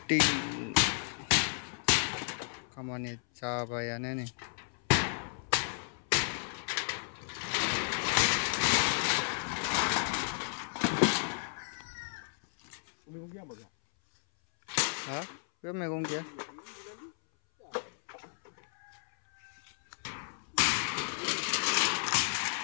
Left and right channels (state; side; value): silent; right; 56 dB below the other